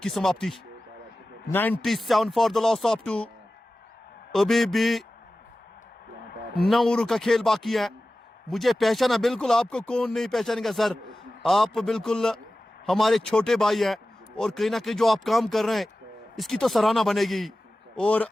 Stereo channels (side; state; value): both; normal; correlation 0.95